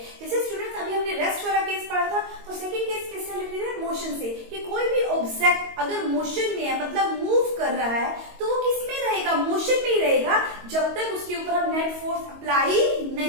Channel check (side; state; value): left; late; 22 ms